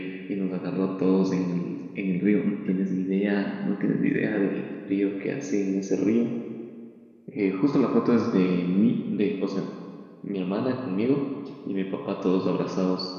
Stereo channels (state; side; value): identical; both; correlation 1.00